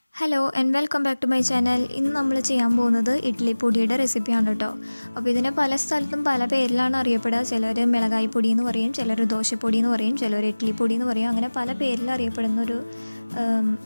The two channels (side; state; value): both; inverted; correlation -1.00